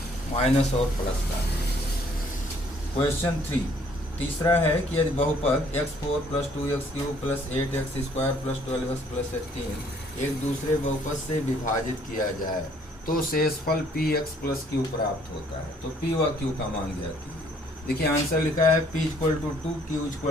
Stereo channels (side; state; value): both; normal; correlation 0.62